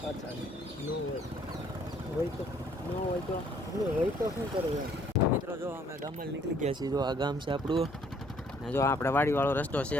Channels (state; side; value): normal; both; correlation 0.62